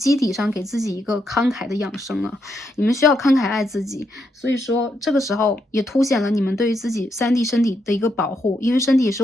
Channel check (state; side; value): normal; both; correlation 0.79